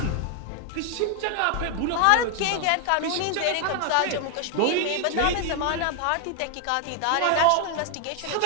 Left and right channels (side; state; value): both; different; correlation 0.00